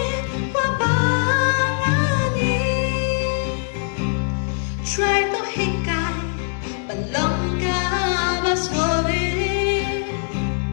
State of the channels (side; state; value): right; silent; digital silence